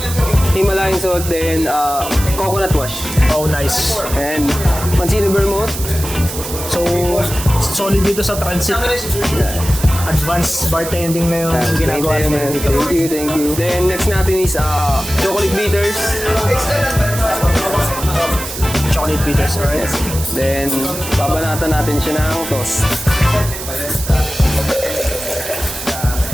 Himalayan salt, then coconut wash. Oh, nice. And Mancini Vermouth. So, solid dito sa transit. Advanced bartending na yung ginagawa natin dito. Thank you. Then next natin is chocolate bitters. Chocolate bitters, alright? Then babanatan natin siya ng toast.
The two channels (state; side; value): noise; right; hiss, 8 dB below the sound